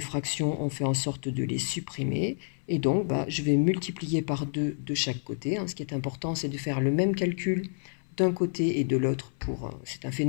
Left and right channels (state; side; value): silent; right; 58 dB below the other